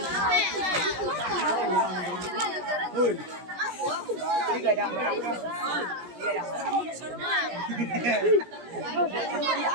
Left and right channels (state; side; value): late; left; 17 ms